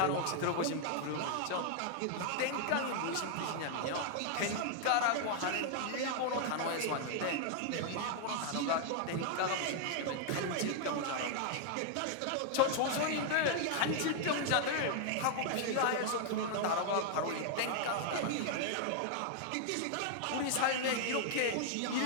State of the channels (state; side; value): different; both; correlation 0.00